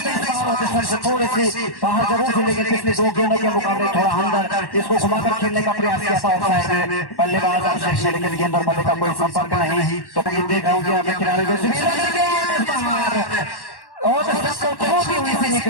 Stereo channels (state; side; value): late; right; 1.1 ms